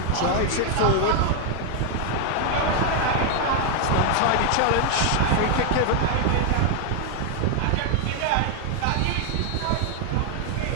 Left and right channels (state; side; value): different; both; correlation 0.01